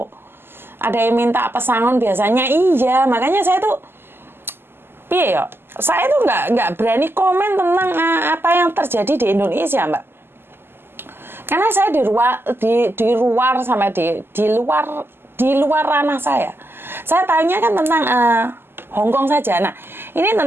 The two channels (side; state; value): left; late; 0.11 ms